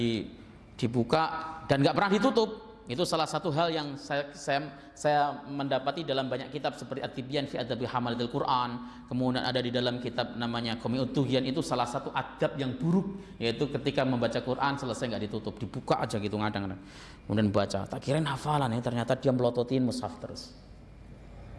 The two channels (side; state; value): both; identical; correlation 1.00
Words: dibuka dan nggak pernah ditutup. Itu salah satu hal yang saya mendapati dalam banyak kitab seperti At-Tibyan fi Adabi Hamalatil Quran. Kemudian ada di dalam kitab namanya Qami'ut Tughyan, itu salah satu adab yang buruk, yaitu ketika membaca Quran selesai nggak ditutup, dibuka aja gitu ngadang-ngadang. Kemudian baca, tak kirain hafalan ya, ternyata dia melototin mushaf terus.